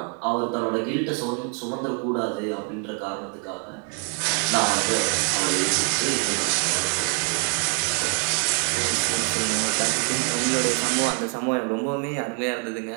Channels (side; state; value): left; quieter; 39.6 dB